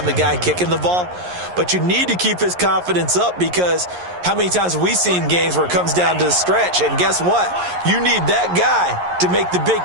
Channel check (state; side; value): late; left; 11 ms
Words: the guy kicking the ball. But you need to keep his confidence up, because how many times have we seen games where it comes down to the stretch, and guess what? You need that guy to make the big